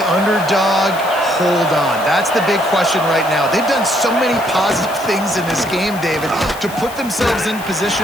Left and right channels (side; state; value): left; noise; hiss, 16 dB below the sound